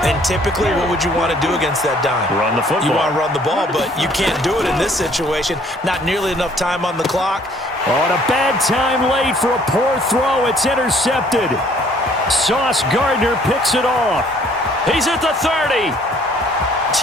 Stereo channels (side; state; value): both; normal; correlation 0.60